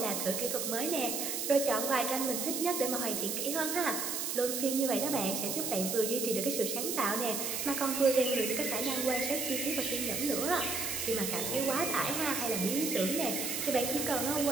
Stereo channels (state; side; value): noise; right; hiss, 2 dB below the sound